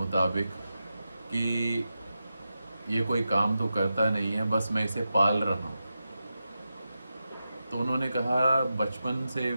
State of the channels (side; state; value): both; inverted; correlation -0.90